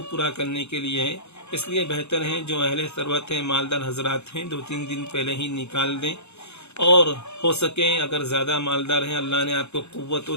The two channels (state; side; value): late; right; 0.81 ms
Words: پورا کرنے کے لیے ہے۔ اس لیے بہتر ہے جو اہل ثروت ہیں، مالدار حضرات ہیں، 2-3 دن پہلے ہی نکال دیں، اور ہو سکے اگر زیادہ مالدار ہیں، اللہ نے آپ کو قوت و